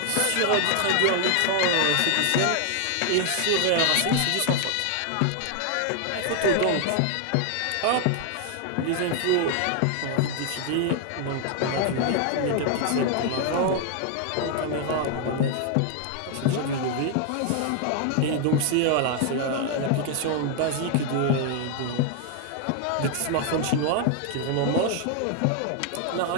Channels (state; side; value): different; both; correlation 0.00